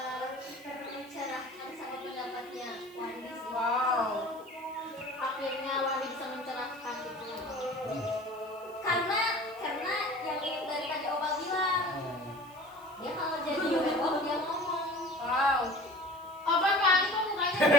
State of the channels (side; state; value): right; noise; hiss, 25 dB below the sound